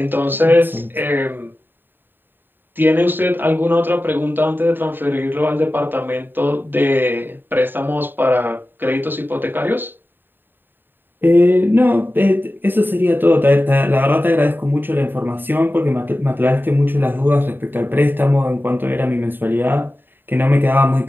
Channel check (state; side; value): late; left; 0.094 ms